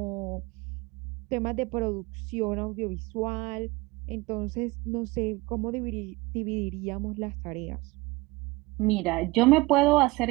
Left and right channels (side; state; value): left; quieter; 22.5 dB